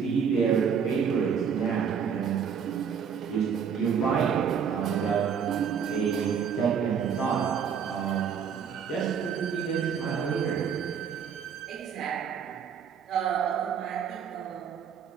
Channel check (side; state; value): left; quieter; 7.2 dB